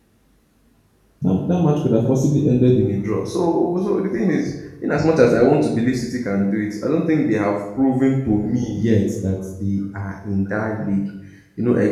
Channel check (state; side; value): identical; both; correlation 1.00